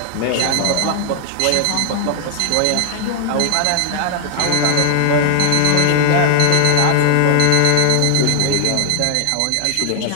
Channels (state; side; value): different; both; correlation 0.00